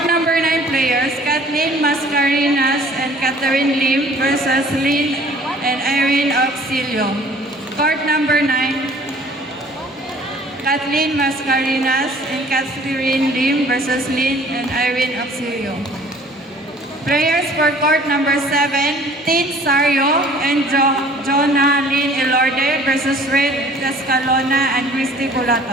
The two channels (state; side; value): normal; both; correlation 0.52